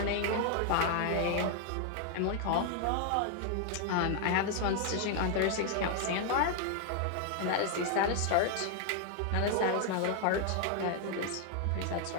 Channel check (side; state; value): both; different; correlation 0.00